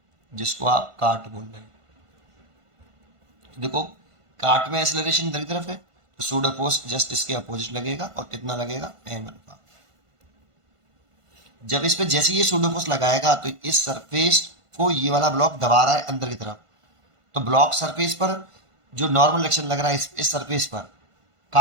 जिसको आप काट बोल रहे हैं। देखो काट में एक्सेलरेशन इधर की तरफ है, तो सूडो फोर्स जस्ट इसके अपोजिट लगेगा और कितना लगेगा एम अल्फा। जब इस पे जैसे ये सूडो फोर्स लगाएगा तो इस सरफेस को ये वाला ब्लॉक दबा रहा है अंदर की तरफ, तो ब्लॉक सरफेस पर जो नॉर्मल एक्शन लग रहा है इस सरफेस पर,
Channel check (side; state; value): left; late; 1.5 ms